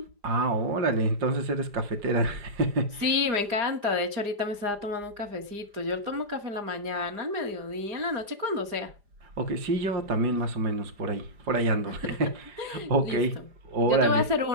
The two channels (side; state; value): left; late; 4.9 ms